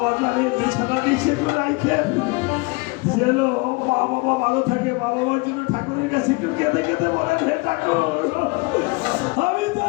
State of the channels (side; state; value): right; quieter; 27.2 dB